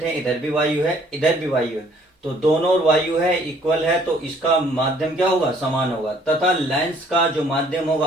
हैं इधर भी वायु है इधर भी वायु है, तो दोनों ओर वायु है, इक्वल है, तो इसका माध्यम क्या होगा, समान होगा। तथा लेंस का जो माध्यम होगा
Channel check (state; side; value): normal; both; correlation 0.60